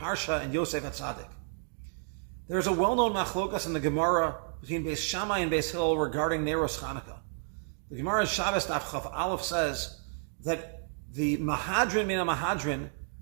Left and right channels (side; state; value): left; silent; digital silence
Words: and Yosef HaTzadik. There's a well-known machlokas in the Gemara between Beis Shammai and Beis Hillel regarding Neros Chanukah. The Gemara in Shabbos Daf Chaf Aleph says that the Mahadrin Mina Mahadrin